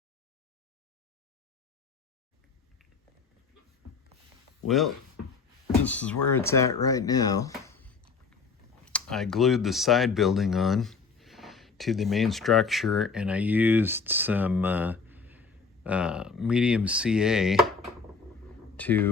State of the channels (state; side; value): quieter; right; 5.0 dB